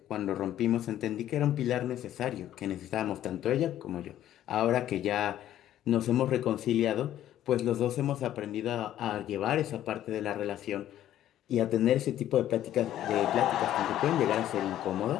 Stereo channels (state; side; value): quieter; right; 12.2 dB